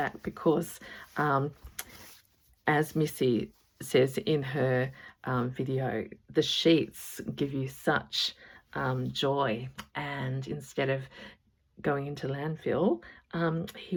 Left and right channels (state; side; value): identical; both; correlation 1.00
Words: because as Missy says in her video, the sheets give you such joy, and instead of going into landfill,